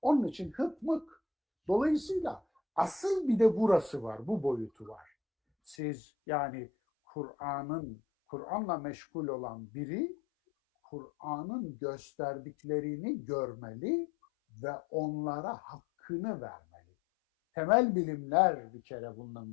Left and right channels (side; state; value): right; drops out; at 5.8 s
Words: Onun için hıkmık. Dolayısıyla asıl bir de burası var, bu boyutu var. Siz yani Kur'an'la meşgul olan biri Kur'an'ın gösterdiklerini görmeli ve onlara hakkını vermeli. Temel bilimler bir kere